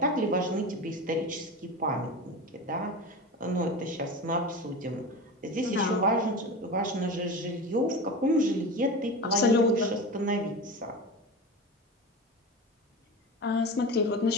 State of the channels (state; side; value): normal; both; correlation 0.28